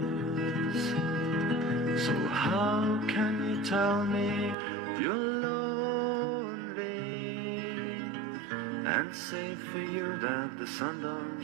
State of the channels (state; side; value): drops out; left; at 4.5 s